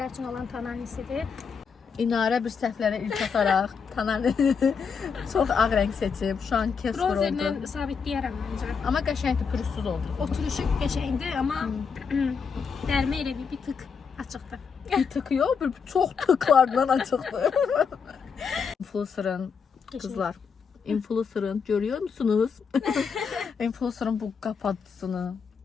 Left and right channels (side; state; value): right; quieter; 6.0 dB